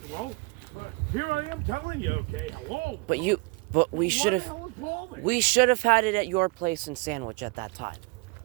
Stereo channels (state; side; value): quieter; left; 26.3 dB